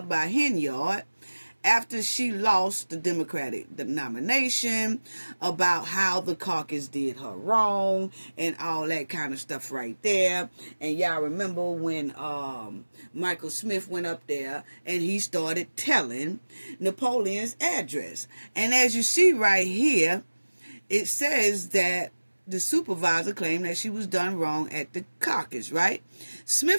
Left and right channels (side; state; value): both; inverted; correlation -1.00